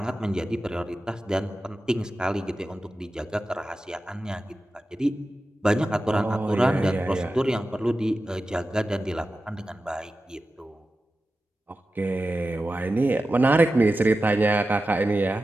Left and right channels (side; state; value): both; normal; correlation 0.93